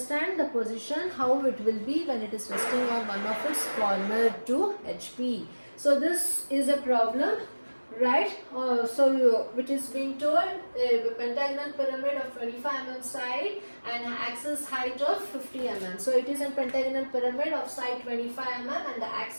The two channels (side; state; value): both; inverted; correlation -1.00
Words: the position, how it will be when it is resting on one of its corner to HP. So this is a problem, right? Which is being told a pentagonal pyramid of 25 mm side and axis height of 50 mm. So it is a pentagonal pyramid of side 25 mm and the